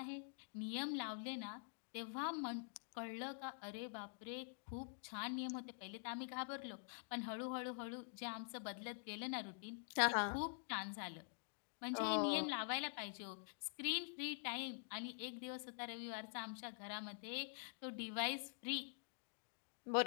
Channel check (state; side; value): silent; right; digital silence